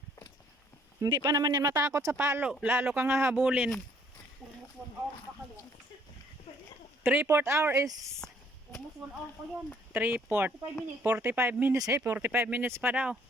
Hindi pa naman yan matakot sa palo. Lalo kang hahabulin. Almost 1 hour pa kayo. 3/4 hour is Almost 1 hour pa yan. 3/4. 5 minutes. 45 minutes pa daw.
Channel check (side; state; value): both; normal; correlation 0.63